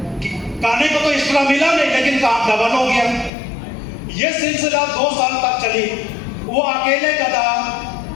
खाने को तो एक्स्ट्रा मिला नहीं, लेकिन काम डबल हो गया। यह सिलसिला 2 साल तक चली। वो अकेले गधा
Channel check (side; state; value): right; drops out; at 3.3 s